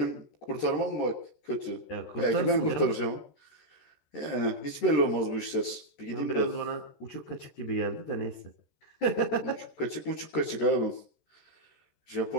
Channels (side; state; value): right; late; 13 ms